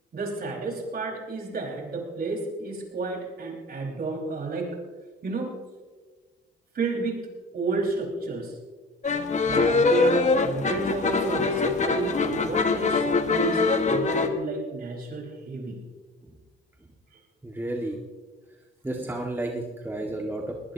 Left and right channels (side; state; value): both; normal; correlation 0.39